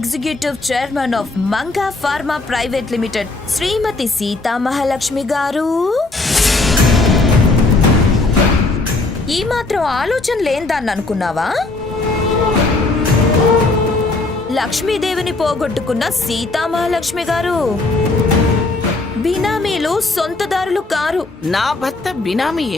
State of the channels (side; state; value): right; quieter; 3.3 dB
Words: chairman of Manga pharma private limited Shrimati Seethamahalakshmi garu. ఈ మాత్రం ఆలోచన లేందాన్ని అనుకున్నావా? లక్ష్మీదేవిని పోగొట్టుకున్న సీతామహాలక్ష్మి గారు బినామీలు వాళ్ళు సొంతదారులు కారు. నా భర్త బినామీ